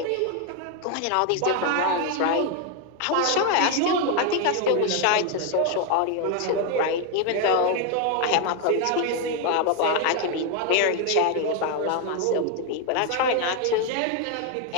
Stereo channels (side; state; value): both; different; correlation 0.01